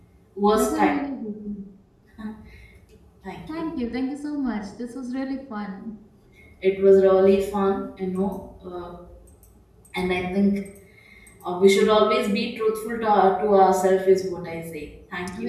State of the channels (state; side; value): identical; both; correlation 1.00